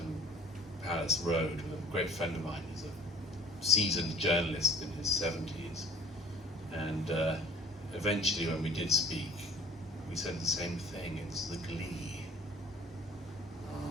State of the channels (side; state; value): both; normal; correlation 0.48